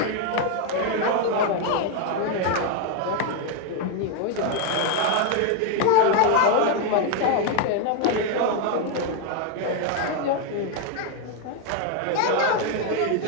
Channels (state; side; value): different; both; correlation 0.01